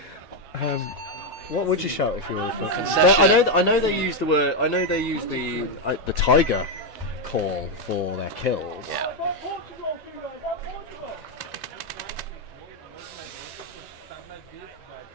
what would you shout if you were? Concession. I know they use the word. I know they use the tiger call for their kills. Yeah.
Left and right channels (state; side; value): normal; both; correlation 0.04